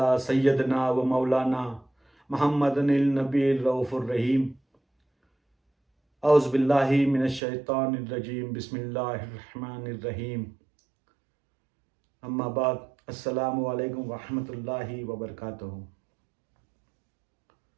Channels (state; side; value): drops out; left; at 7.4 s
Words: सय्यदना व मौलाना मुहम्मदिल नबील रऊफुर रहीम। औज़ु बिल्लाहि मिनश शैतानिर रजीम। बिस्मिल्लाहिर रहमानिर रहीम। अम्मा बाद, अस्सलामु अलैकुम व रहमतुल्लाहि व बरकातुहू।